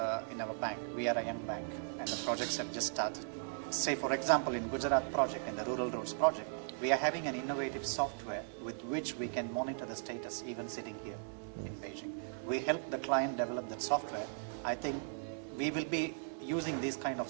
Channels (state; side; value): silent; left; digital silence